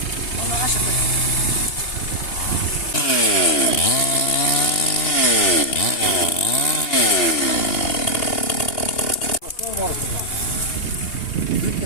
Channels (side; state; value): right; late; 2.8 ms